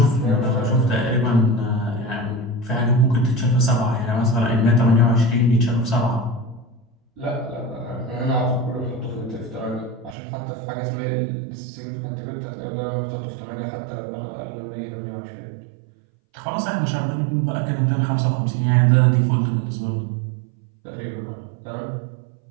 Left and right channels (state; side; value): drops out; left; at 10.2 s